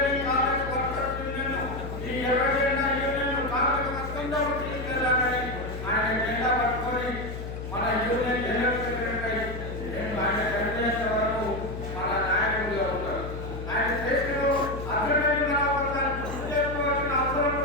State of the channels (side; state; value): left; noise; hum, 8 dB below the sound